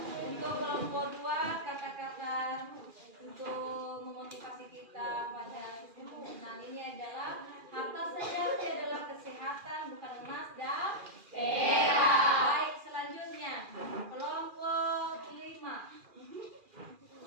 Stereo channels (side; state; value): left; late; 2.4 ms